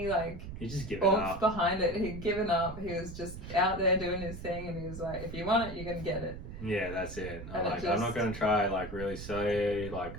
like he just given oomph up behind it. He'd given up. He was just out there doing his thing, and he was like, if you want it, you're gonna get it. Yeah, that's it. I'm not gonna try like really sell you, like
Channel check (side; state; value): right; noise; rumble, 10 dB below the sound